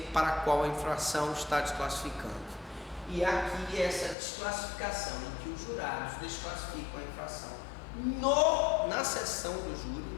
para qual a infração está desclassificando. E aqui essa desclassificação em que os jurados desclassificam a infração na sessão do júri,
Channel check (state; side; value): drops out; right; at 4.2 s